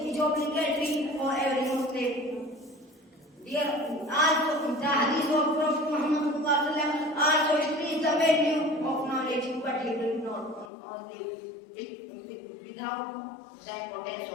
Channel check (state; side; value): drops out; right; at 10.7 s